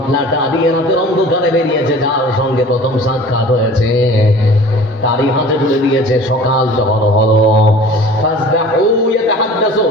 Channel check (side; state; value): both; normal; correlation 0.43